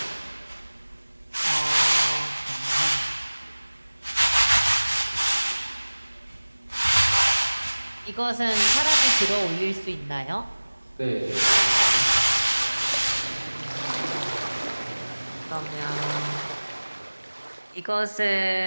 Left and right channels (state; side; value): inverted; both; correlation -1.00